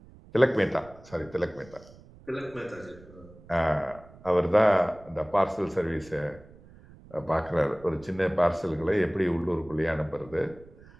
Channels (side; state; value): right; noise; rumble, 22 dB below the sound